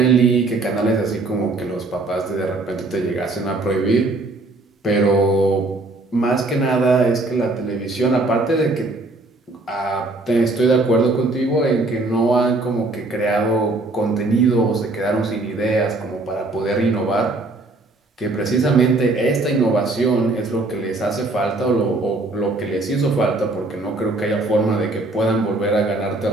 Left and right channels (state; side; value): quieter; left; 3.0 dB